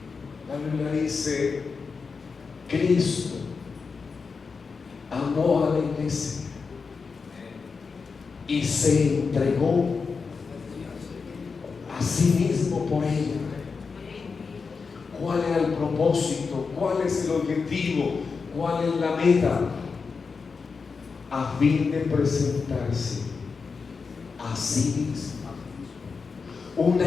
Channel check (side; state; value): right; quieter; 5.0 dB